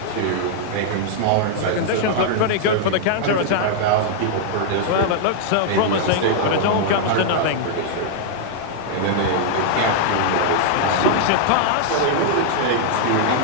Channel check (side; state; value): both; different; correlation -0.01